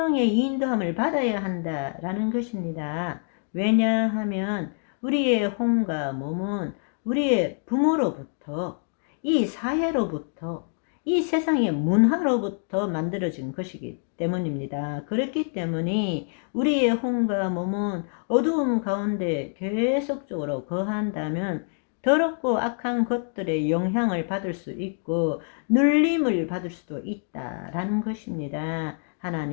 인도함을 받아야 한다라는 것입니다. 왜냐하면 우리의 혼과 몸은 우리의 부모로부터, 이 사회로부터, 이 세상의 문화로부터 만들어진 것이기 때문입니다. 그렇기 때문에 우리의 혼과 몸은 어두움 가운데 계속적으로 거한다면 더럽고 악한 것들의 영향을 받을 수 있고 눌림을 받을 수도 있다라는 것입니다.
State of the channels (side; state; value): right; silent; 61 dB below the other